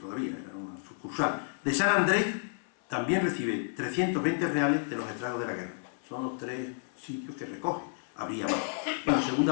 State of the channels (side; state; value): right; silent; 57 dB below the other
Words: todavía, era una sucursal, de San Andrés también recibe 320 reales de los estragos de la guerra. Son los 3 sitios que recoge. Habría más. Bueno, la